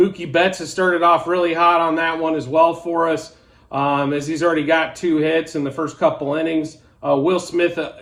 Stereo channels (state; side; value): identical; both; correlation 1.00